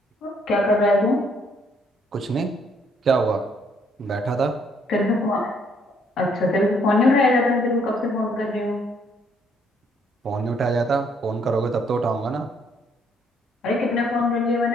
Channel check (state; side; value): normal; both; correlation 0.67